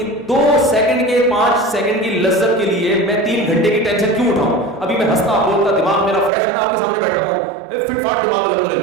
2 سیکنڈ کے 5 سیکنڈ کی لذت کے لیے میں 3 گھنٹے کی ٹینشن کیوں اٹھاؤں؟ ابھی میں ہنستا بولتا دماغ میرا فریش ہے نا, آپ کے سامنے بیٹھا ہوں, فٹ فاٹ دماغ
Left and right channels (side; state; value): left; drops out; at 6.3 s